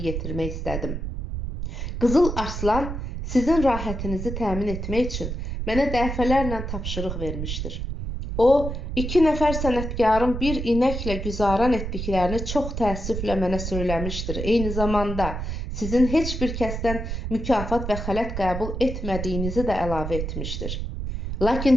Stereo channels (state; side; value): noise; right; rumble, 5 dB below the sound